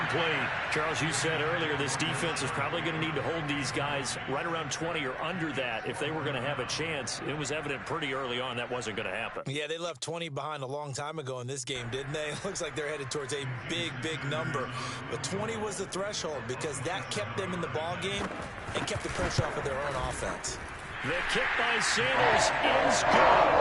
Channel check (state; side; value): identical; both; correlation 1.00